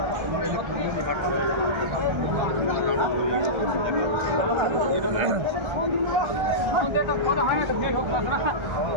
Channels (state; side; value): late; left; 1.4 ms